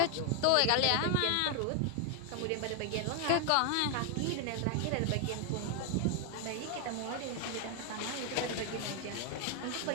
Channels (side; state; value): both; different; correlation 0.01